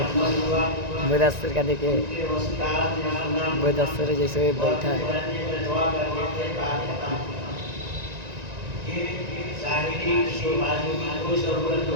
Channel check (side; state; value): left; late; 1.9 ms